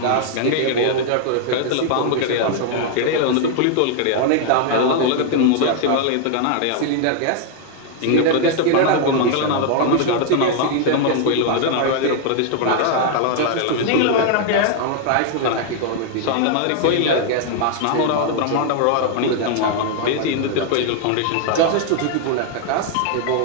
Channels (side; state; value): both; different; correlation 0.00